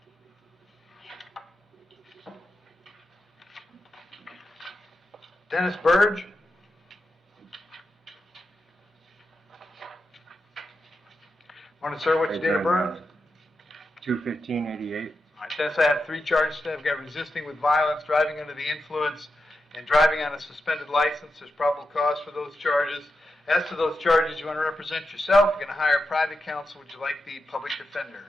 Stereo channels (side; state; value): both; normal; correlation 0.88